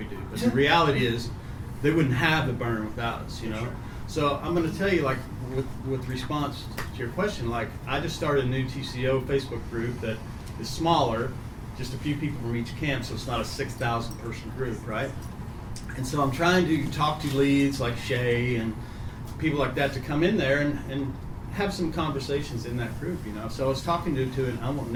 do. But the reality is they wouldn't have the burn without us, So I'm going to tell you, like, with response to your question, like, I just started a new TCO Facebook group that is smaller, just a few people from each camp, so it's not a 6,000 person group, right? And so I'm trying to talk to leads like Shay and people like that to come in there and have some conversations in that group, So I was talking to and I won't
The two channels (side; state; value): both; identical; correlation 1.00